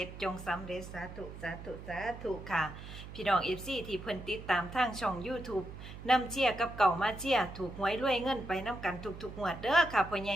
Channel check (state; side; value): noise; right; hum, 12 dB below the sound